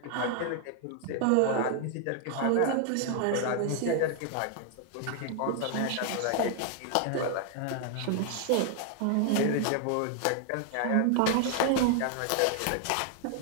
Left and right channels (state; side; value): different; both; correlation 0.00